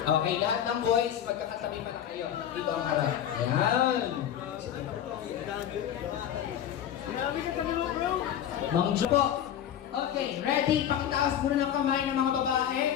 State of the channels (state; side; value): quieter; right; 10.2 dB